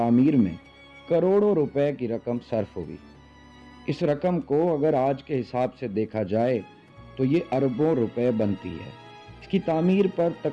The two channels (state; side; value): identical; both; correlation 1.00